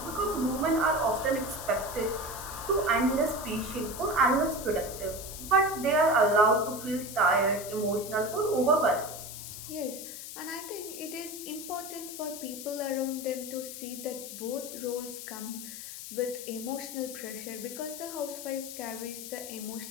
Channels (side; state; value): left; noise; hiss, 10 dB below the sound